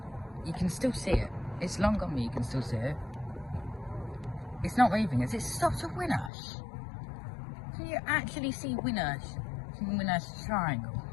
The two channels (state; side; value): drops out; right; at 6.3 s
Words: you can still see it. It's long gone, but you can still see it. It's not moving as it stops at Winnersh. Can you actually see Winnersh from Winnersh Triangle?